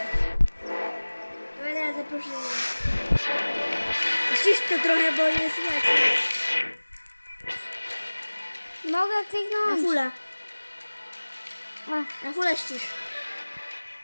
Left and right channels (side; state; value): both; inverted; correlation -1.00